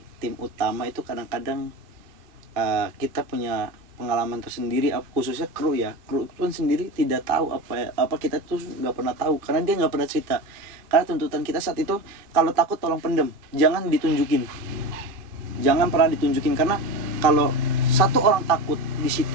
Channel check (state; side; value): late; left; 2.5 ms